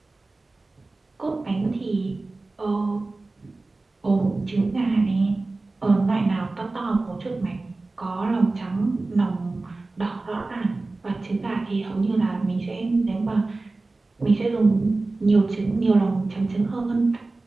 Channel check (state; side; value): quieter; left; 3.3 dB